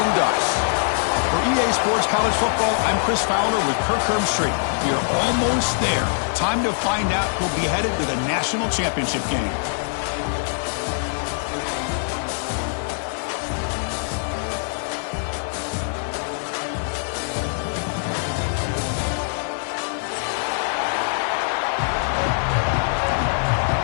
Ducks. For EA Sports College Football, I'm Chris Fowler with Kirk Herbstreit. We are almost there. Time to find out who'll be headed to the national championship game.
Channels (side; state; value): right; silent; digital silence